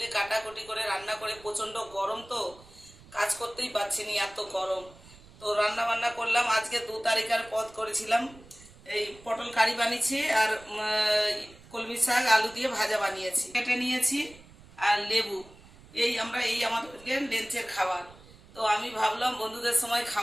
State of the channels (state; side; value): noise; right; rumble, 22 dB below the sound